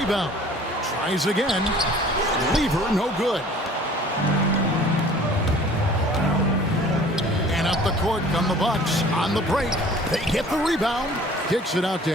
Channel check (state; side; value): normal; both; correlation 0.49